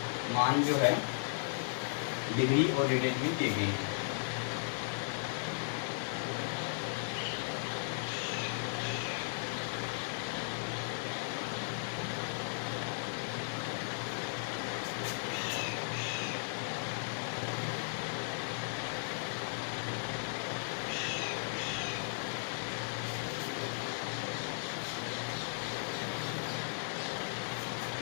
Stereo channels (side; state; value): right; silent; digital silence